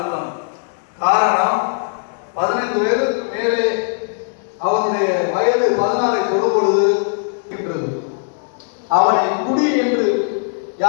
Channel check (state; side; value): silent; right; digital silence